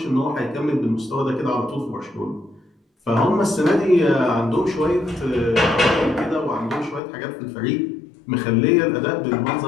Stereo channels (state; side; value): drops out; right; at 7.0 s